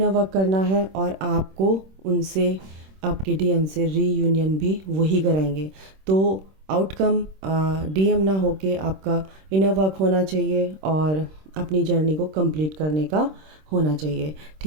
वर्क करना है, और आपको उनसे, आपके डीएम से रीयूनियन भी वही कराएंगे। तो आउटकम डीएम ना होके आपका इनर वर्क होना चाहिए और अपनी जर्नी को कंप्लीट करने का होना चाहिए।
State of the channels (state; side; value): late; left; 26 ms